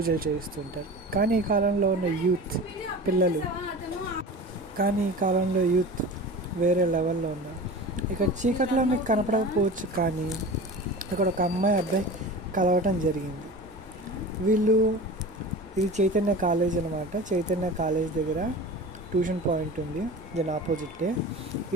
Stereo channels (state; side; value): normal; both; correlation 0.35